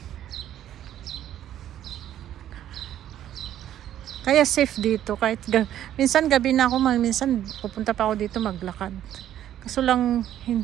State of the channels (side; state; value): left; quieter; 11.5 dB